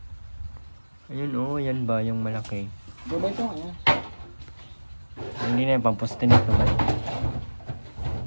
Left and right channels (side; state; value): both; inverted; correlation -1.00